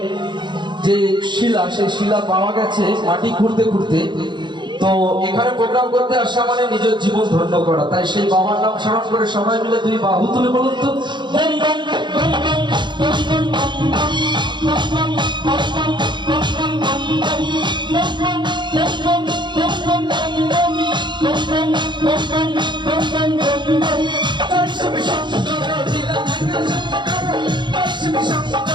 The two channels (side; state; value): left; late; 0.22 ms